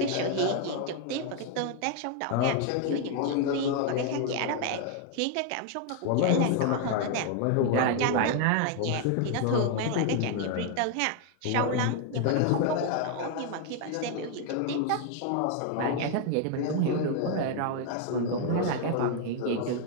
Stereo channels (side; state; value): both; different; correlation 0.00